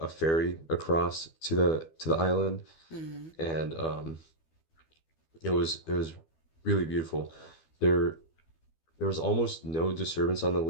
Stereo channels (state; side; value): late; right; 12 ms